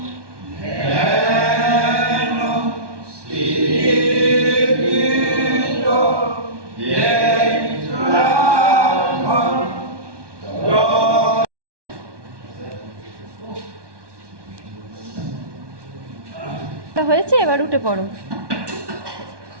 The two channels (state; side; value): late; left; 1.2 ms